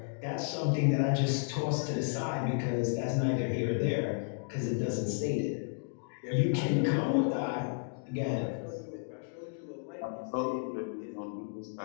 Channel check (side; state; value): right; silent; digital silence